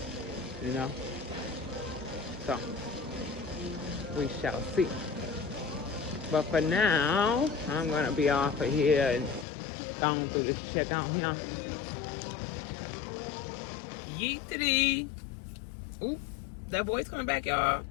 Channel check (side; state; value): right; drops out; at 9.5 s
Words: you know? So, we shall see. But for now, I'm gonna be off of here and going through this checkout here. Yeetity. Oop, that boy's coming back, y'all.